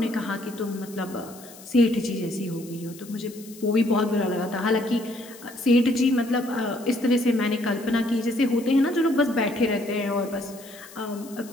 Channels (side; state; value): left; noise; hiss, 19 dB below the sound